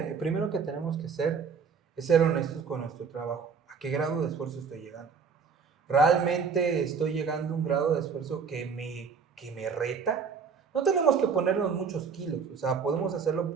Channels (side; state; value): left; quieter; 5.8 dB